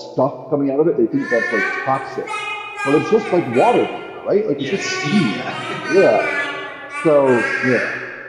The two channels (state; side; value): identical; both; correlation 1.00